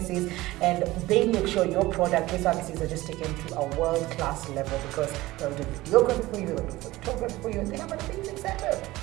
and they make sure your product, your services are just taken to a world-class level, because they'll do videography for you, they'll do photography for you, and they have an amazing setup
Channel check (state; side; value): quieter; left; 18.4 dB